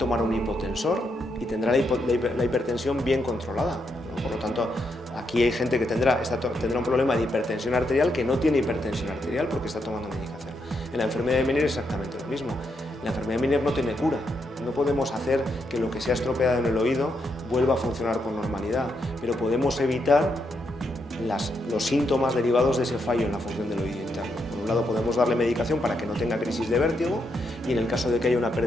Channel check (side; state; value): both; normal; correlation 0.80